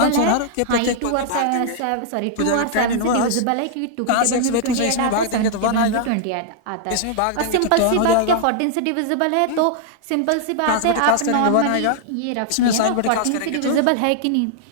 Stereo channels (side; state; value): both; different; correlation -0.01